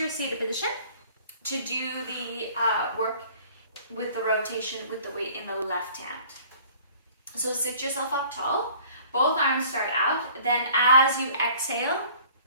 your seated position to do the work with the rotation with the weight in the left hand. So sit yourself up tall. Both arms start out. Then as you exhale,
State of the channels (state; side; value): inverted; both; correlation -0.52